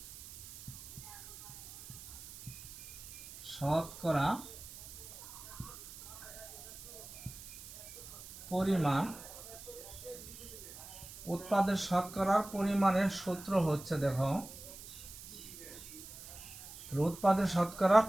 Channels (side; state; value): right; noise; hiss, 14 dB below the sound